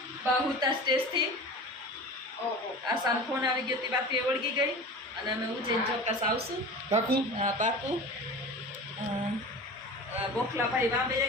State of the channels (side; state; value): both; normal; correlation 0.35